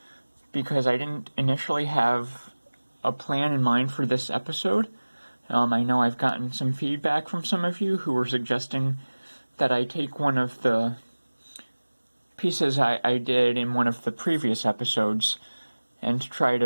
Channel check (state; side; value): inverted; both; correlation -1.00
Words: because I didn't initially have a plan in mind for this episode. I know I've gotten some feedback from some of you who were suggesting that I take one of the pieces I did in one of the previous episodes and try